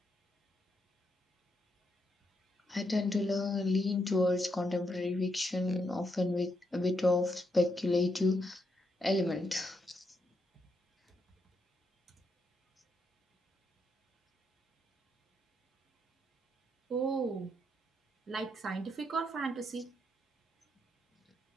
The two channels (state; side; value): normal; both; correlation 0.79